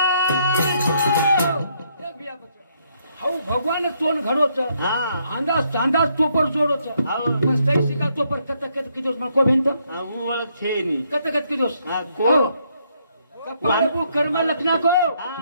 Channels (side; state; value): both; inverted; correlation -0.73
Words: हाऊ भगवान तोन घडो छ हाँ अंदाज अंदाज तोपर जोडो छ आओ मस्त शिका तोपर कत कत किदोस मको भिंत हाँ वो वाला छे नी कत कत किदोस हाँ को कपाळ बु कर्म लखना को